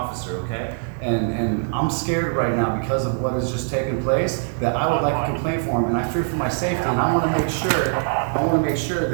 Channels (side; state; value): left; silent; 62 dB below the other